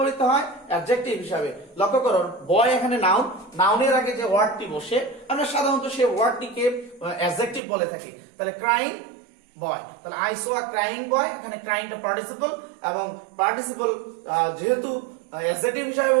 হয়, অ্যাডজেক্টিভ হিসাবে। লক্ষ্য করো বয় এখানে নাউন, নাউনের আগে যে ওয়ার্ডটি বসে আমরা সাধারণত সেই ওয়ার্ডটিকে অ্যাডজেক্টিভ বলে থাকি। তাহলে ক্রাইং বয়, তাহলে আই সো আ ক্রাইং বয়, এখানে ক্রাইংটা পার্টিসিপল, এবং পার্টিসিপল যেহেতু অ্যাডজেক্টিভ হিসাবে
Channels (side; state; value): left; drops out; at 7.6 s